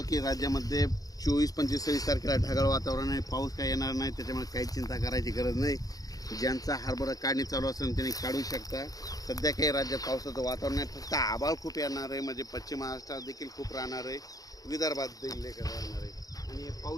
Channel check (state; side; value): late; right; 0.18 ms